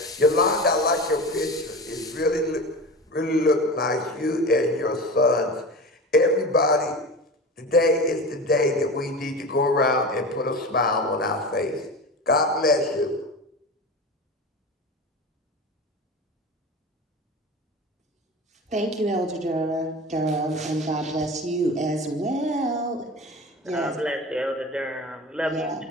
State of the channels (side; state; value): both; normal; correlation 0.30